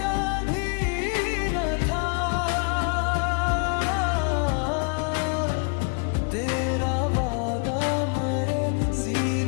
भी न था, तेरा वादा मरे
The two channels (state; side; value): quieter; right; 36.2 dB